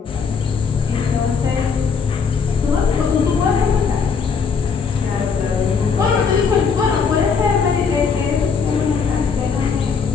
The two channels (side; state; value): right; quieter; 5.8 dB